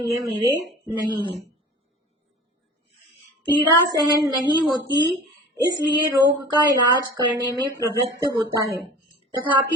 ये मेरे नहीं है। पीड़ा सहन नहीं होती, इसलिए रोग का इलाज करने में प्रवृत्त होता है,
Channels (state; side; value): normal; both; correlation 0.41